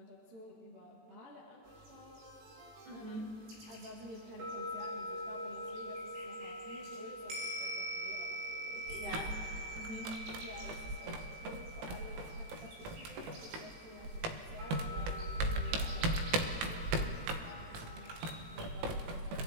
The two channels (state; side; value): late; left; 18 ms